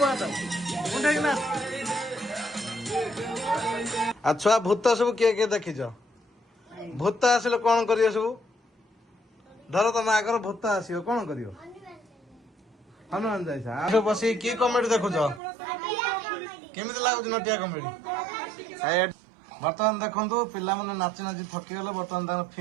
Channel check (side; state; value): left; drops out; at 15.4 s